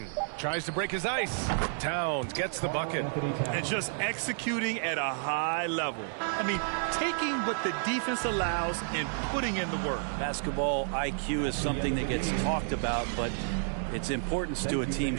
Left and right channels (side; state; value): left; silent; digital silence